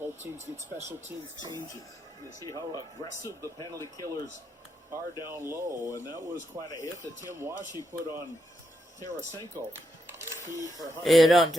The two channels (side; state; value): both; normal; correlation 0.81